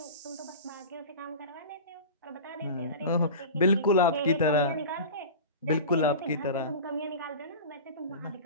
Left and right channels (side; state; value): both; inverted; correlation -0.32